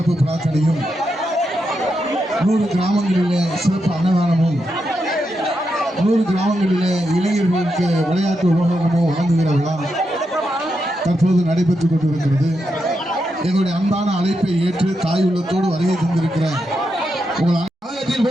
பிரார்த்தனையும் 100 கிராமங்களிலே சிறப்பு அன்னதானமும் 100 கிராமங்களிலே இளைஞர்களுக்கு விளையாட்டு உபகரணமும் வழங்குகிற விழா தற்போது நடைபெற்றுக் கொண்டிருக்கிறது. எங்களுடைய அன்பான அழைப்பை ஏற்று தாய் உள்ளத்தோடு வருகை தந்திருக்கிற உங்கள்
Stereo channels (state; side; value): normal; both; correlation 0.85